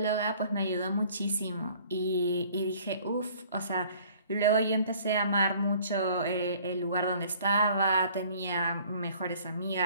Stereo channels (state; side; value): inverted; both; correlation -0.54